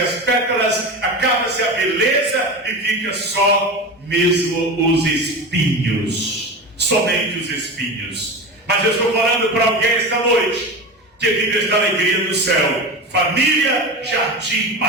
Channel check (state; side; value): normal; both; correlation 0.27